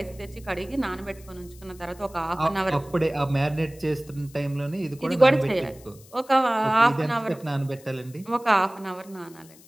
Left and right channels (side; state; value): left; noise; hiss, 24 dB below the sound